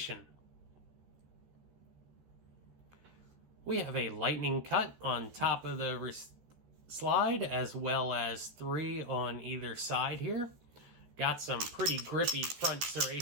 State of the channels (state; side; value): late; left; 13 ms